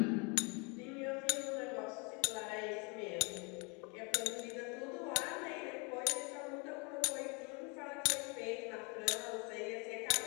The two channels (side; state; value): right; quieter; 32.2 dB